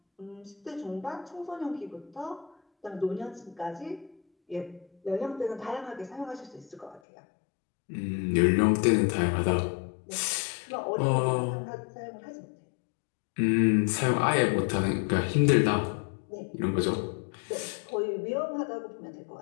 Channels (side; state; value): right; drops out; at 7.0 s